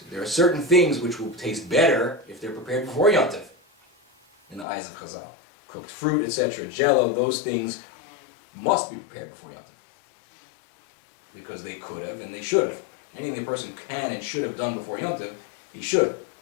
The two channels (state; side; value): drops out; right; at 4.7 s